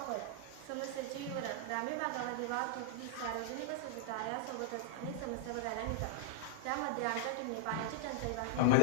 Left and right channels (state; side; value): different; both; correlation -0.01